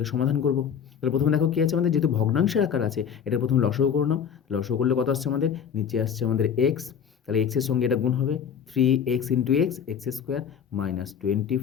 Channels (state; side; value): quieter; right; 7.7 dB